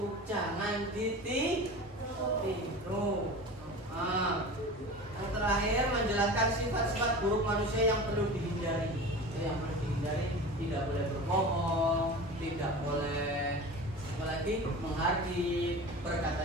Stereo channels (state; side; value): normal; both; correlation 0.34